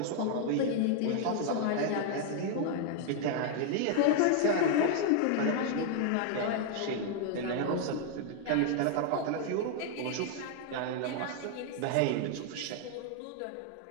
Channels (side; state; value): both; different; correlation 0.00